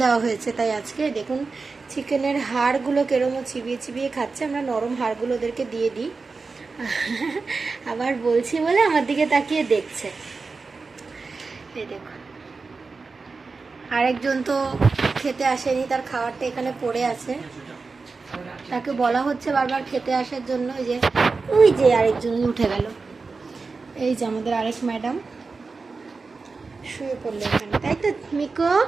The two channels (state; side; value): quieter; left; 4.3 dB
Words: দেওয়া হয়েছে। তাই আজকে দেখুন চিকেনের হাড়গুলো কেরমও চিবিয়ে চিবিয়ে খাচ্ছে। আমরা নরম হাড়গুলো ওদেরকে দিয়ে দিই। আবার বলছি বলে আমার দিকে তাকিয়ে দেখছে। এই দেখুন, আরেকজন তো খেতে আসেনি, তার খাবারটা এখানে পড়ে আছে। তাকে বলা হচ্ছে বারবার খেতে আসার জন্য। ওই যে আরেকজন উঠে গেল। এই যে আমাদের আরেক ম্যাডাম শুয়ে পড়লো এখানে, তাই তো? মিকো,